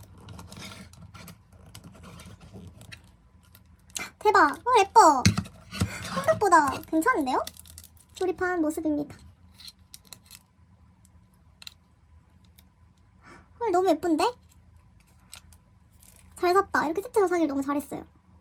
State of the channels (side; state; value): both; identical; correlation 1.00